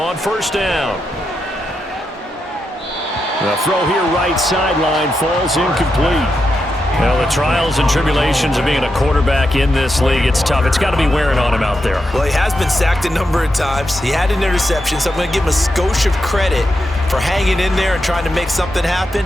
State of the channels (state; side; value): normal; both; correlation 0.86